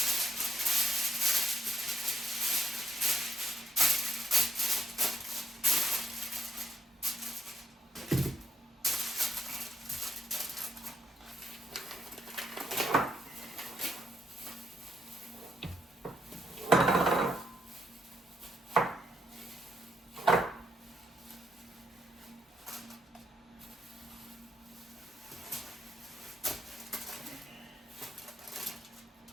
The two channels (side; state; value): both; normal; correlation 0.76